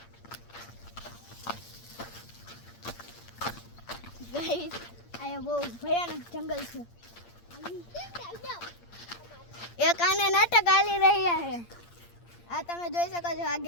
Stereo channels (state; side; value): late; right; 8.6 ms